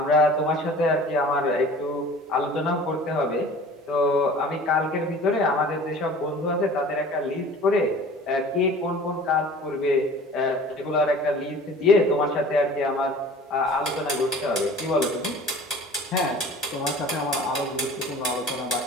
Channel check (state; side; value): normal; both; correlation 0.44